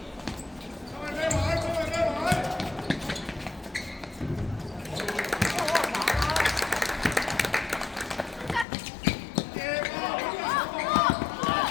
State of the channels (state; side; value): drops out; right; at 8.7 s